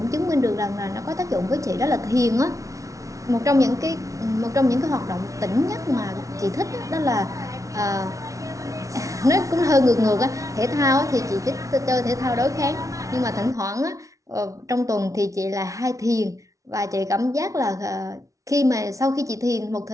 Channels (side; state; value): left; late; 0.16 ms